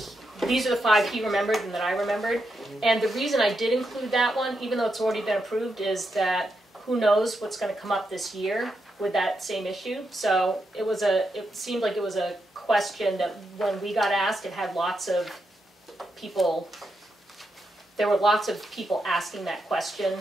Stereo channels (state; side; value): normal; both; correlation 0.83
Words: these are the 5 he remembered and that I remembered. And the reason I did include that one, even though it's already been approved, is that who knows what's going to come up this year with that same issue. So it seemed like it was a question that when we got asked, it had lots of people, there were lots of people asking that question